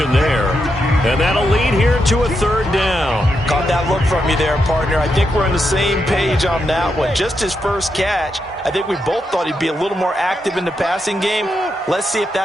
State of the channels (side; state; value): both; normal; correlation 0.83